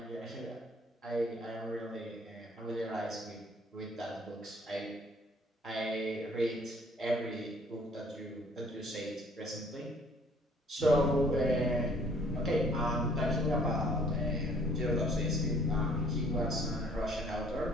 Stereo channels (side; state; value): both; normal; correlation 0.59